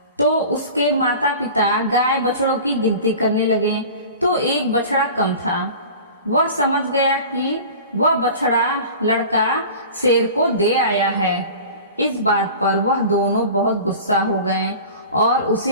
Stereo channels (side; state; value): both; inverted; correlation -0.38